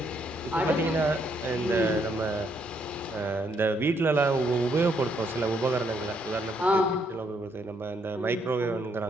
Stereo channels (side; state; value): both; normal; correlation 0.73